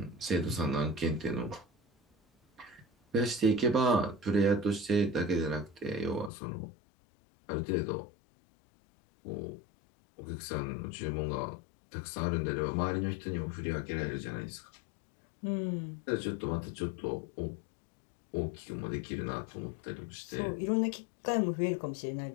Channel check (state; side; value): drops out; right; at 6.3 s